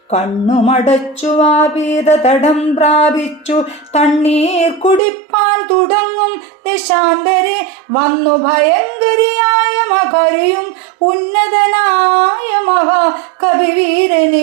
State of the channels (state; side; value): drops out; left; at 5.0 s